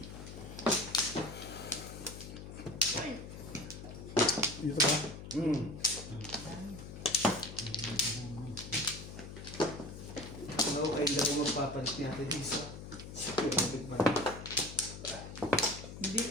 Dito ba? Ano kayo lang magpapalit ni Ate Lisa? Hindi,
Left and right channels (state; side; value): noise; left; hum, 11 dB below the sound